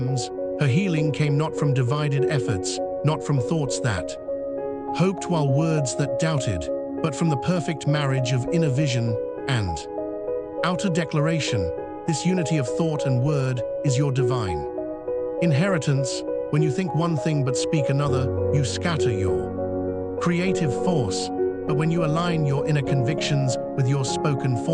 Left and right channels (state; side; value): identical; both; correlation 1.00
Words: Her healing came not from divided efforts, not from thoughts that hoped while words that doubted, but from the perfect marriage of inner vision and outer declaration. This unity of thought and word is your divine inheritance. When you think one thing but speak another, you scatter your creative force. But when you align your inner convictions with your spoken